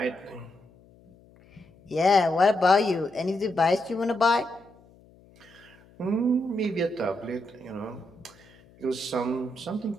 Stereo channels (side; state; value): left; noise; hum, 27 dB below the sound